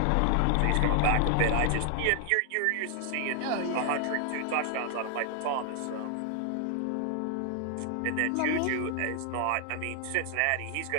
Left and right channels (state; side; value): different; both; correlation 0.00